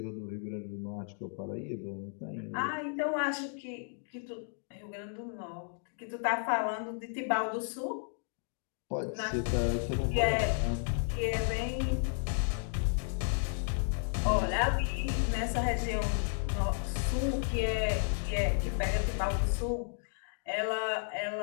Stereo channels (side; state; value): right; silent; 56 dB below the other